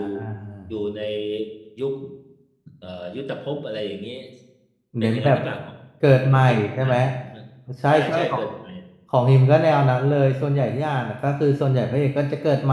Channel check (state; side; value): identical; both; correlation 1.00